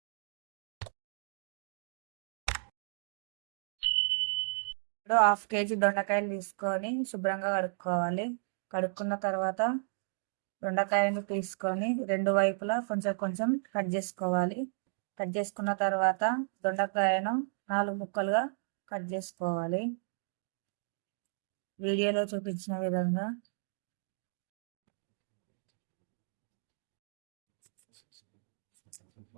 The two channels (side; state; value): left; silent; digital silence